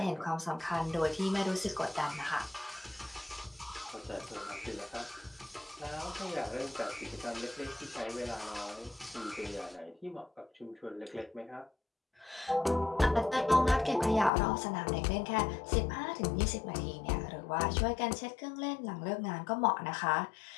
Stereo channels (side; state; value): right; drops out; at 14.3 s